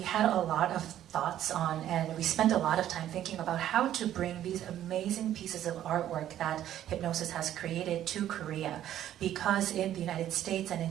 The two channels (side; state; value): left; quieter; 11.8 dB